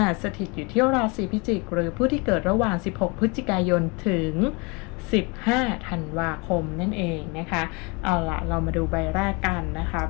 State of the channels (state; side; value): quieter; right; 29.4 dB